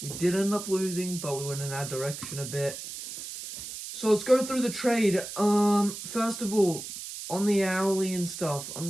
We did end up losing, but we went in our direction a bit. So let's go through the trade. First of all, on the hourly and stuff, I'm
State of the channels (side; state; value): right; noise; hiss, 9 dB below the sound